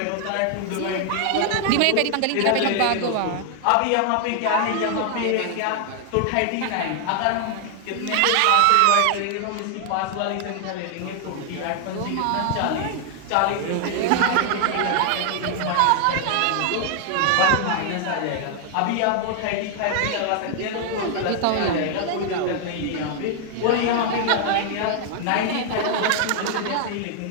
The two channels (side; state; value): both; different; correlation 0.00